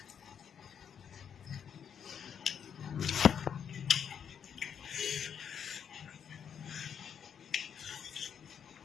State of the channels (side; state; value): right; quieter; 7.9 dB